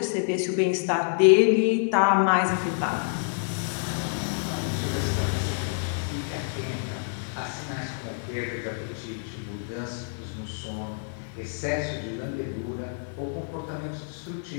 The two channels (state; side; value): silent; right; digital silence